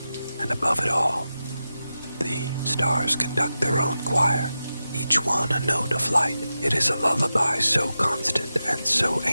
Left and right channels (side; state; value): both; inverted; correlation -0.92